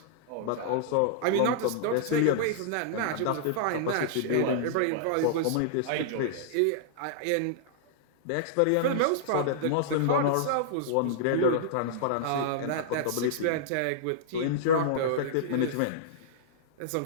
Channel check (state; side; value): different; both; correlation -0.02